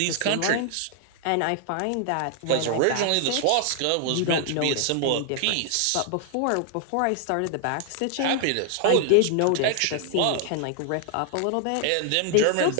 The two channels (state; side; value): different; both; correlation 0.00